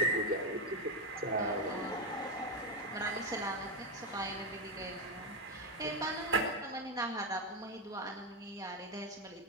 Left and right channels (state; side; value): normal; both; correlation 0.08